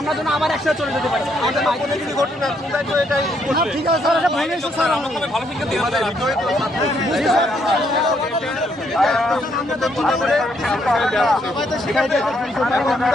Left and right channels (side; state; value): both; normal; correlation 0.72